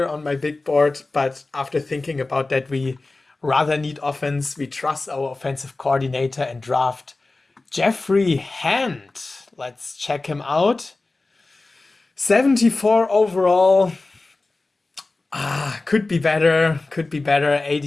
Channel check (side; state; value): right; quieter; 3.3 dB